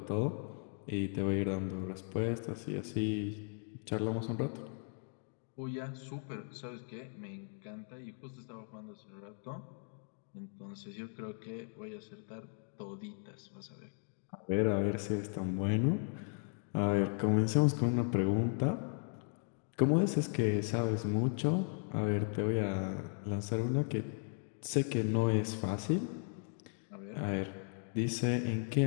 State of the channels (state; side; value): silent; right; 53 dB below the other